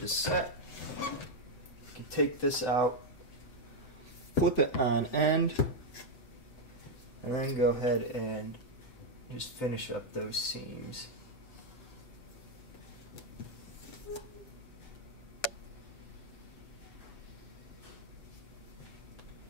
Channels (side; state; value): right; late; 7.9 ms